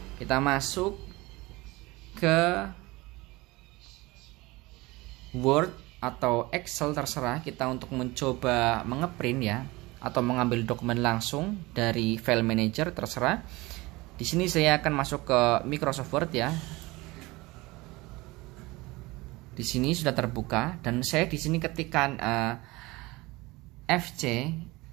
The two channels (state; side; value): quieter; left; 21.8 dB